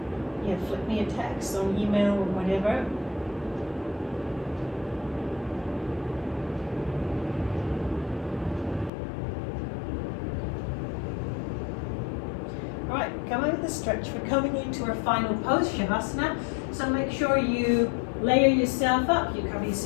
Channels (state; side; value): drops out; right; at 8.9 s